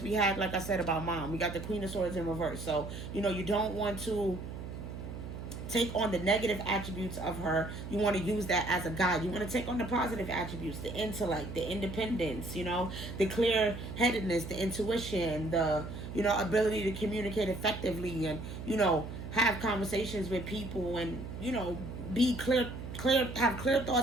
we had, like I said, about mom, we got the Queen of Swords in reverse. So, you know, you don't want to take on the negative attributes of her. You want to use that as a guide. You want to take on the positive attributes, the intellect, the independence, you know, the clear-headedness, the intuition, the, you know, ability to communicate effectively and, you know, have conversations with people and, you know, be clear, have clear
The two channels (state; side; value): noise; right; hum, 9 dB below the sound